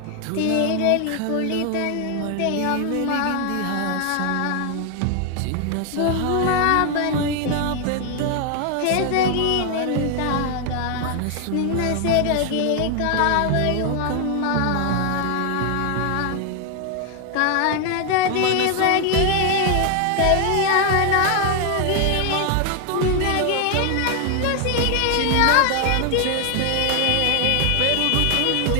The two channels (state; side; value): different; both; correlation 0.00